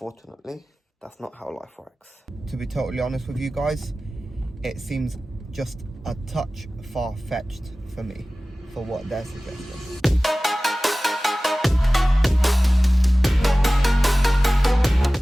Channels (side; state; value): both; normal; correlation 0.97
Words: that's not how life works. To be totally honest with you guys, it seems just a touch far-fetched for me, for what they're suggesting.